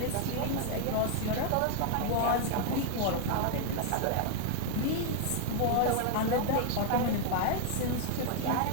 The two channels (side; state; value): both; different; correlation 0.00